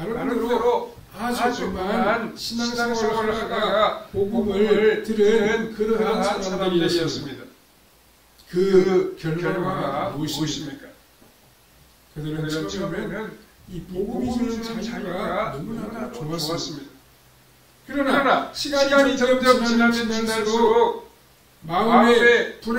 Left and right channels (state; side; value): identical; both; correlation 1.00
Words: 아주 그만 신앙생활을 하다가 복음을 들은 그러한 사람들이었습니다. 그 결과가 무엇입니까? 그들은 처음에는 이 복음이 주는 자유가 너무나 좋았습니다. 그러나 시간이 점점 지날수록 마음의